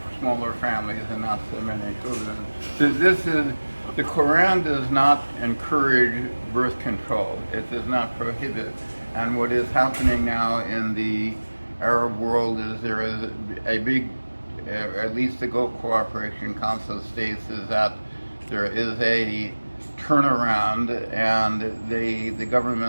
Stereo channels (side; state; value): both; inverted; correlation -1.00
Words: families and not so many children. The Quran does not encourage birth control. It does not prohibit. And what is happening now in the Arab world is there is a big, at least the Gulf Cooperation Council states, is that there is a turnaround, and the